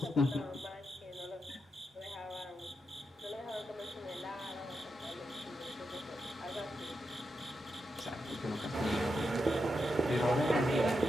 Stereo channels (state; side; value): normal; both; correlation 0.86